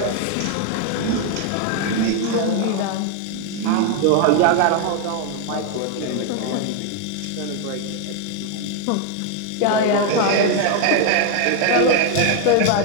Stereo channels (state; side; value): different; both; correlation 0.01